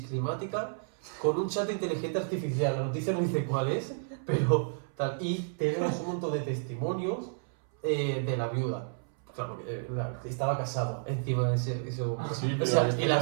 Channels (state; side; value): silent; left; 57 dB below the other